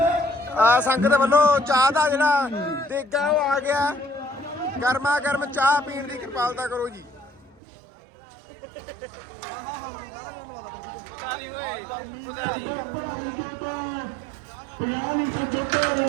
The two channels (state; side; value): drops out; left; at 7.6 s